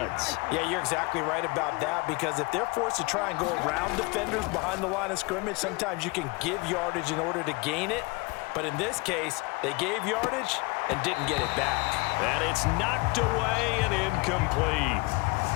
Yeah, you're exactly right about that, because if they're forced to try and go around defenders behind the line of scrimmage, sometimes you can give yardage in order to gain it. But in this case, they gave yardage and didn't get it back. And it's knocked away and incomplete.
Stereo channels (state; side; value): quieter; right; 26.3 dB